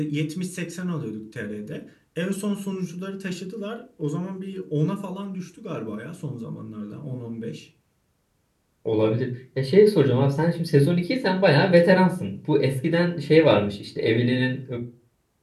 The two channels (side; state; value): both; identical; correlation 1.00